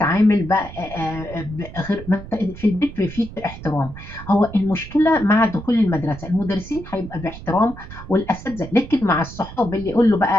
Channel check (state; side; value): noise; right; rumble, 14 dB below the sound